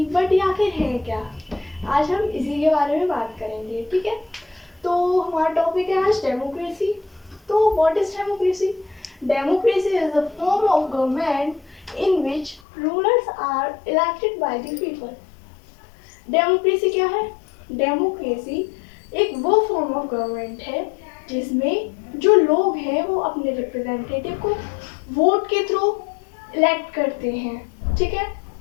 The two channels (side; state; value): right; drops out; at 12.6 s